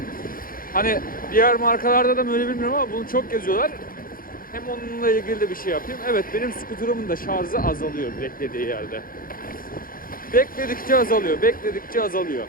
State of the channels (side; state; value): right; late; 0.41 ms